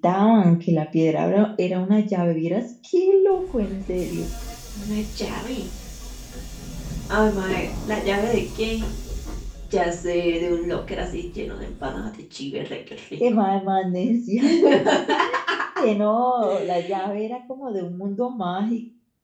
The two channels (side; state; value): both; identical; correlation 1.00